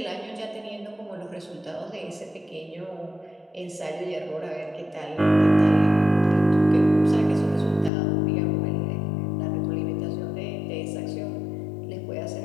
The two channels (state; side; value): drops out; right; at 7.9 s